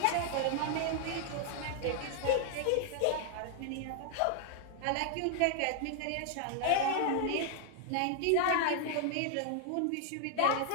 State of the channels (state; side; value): different; both; correlation 0.00